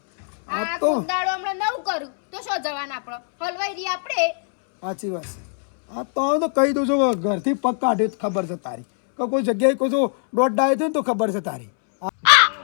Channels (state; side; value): silent; right; 64 dB below the other